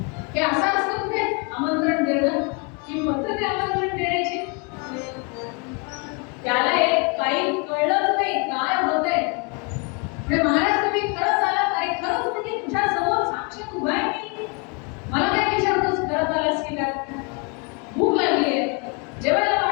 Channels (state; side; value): quieter; right; 33.1 dB